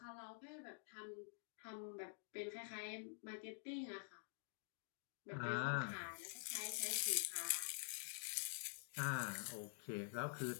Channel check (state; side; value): silent; right; digital silence